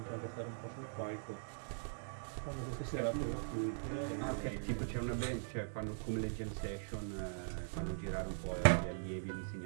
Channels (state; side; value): silent; left; digital silence